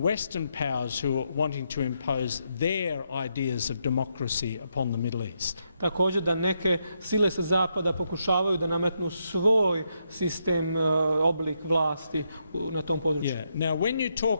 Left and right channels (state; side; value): inverted; both; correlation -0.80